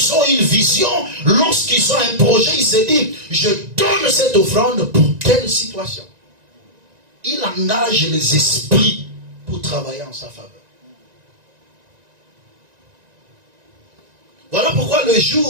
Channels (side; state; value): left; late; 1.9 ms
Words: ont une vision, lorsqu'ils ont un projet. Ils se disent, je donne cette offrande pour telle situation. Il engage les esprits pour travailler en sa faveur. Voilà pourquoi le